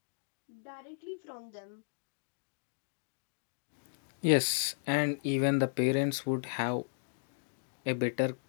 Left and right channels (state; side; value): silent; right; digital silence